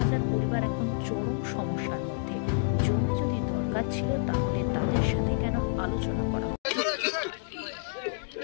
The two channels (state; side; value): silent; right; digital silence